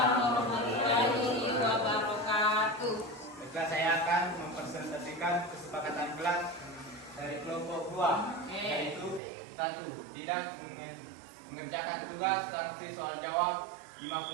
warahmatullahi wabarakatuh. Baiklah, saya akan mempresentasikan kesepakatan kelas dari kelompok 2, yaitu 1, tidak mengerjakan tugas sanksi soal jawab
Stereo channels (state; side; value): drops out; left; at 9.2 s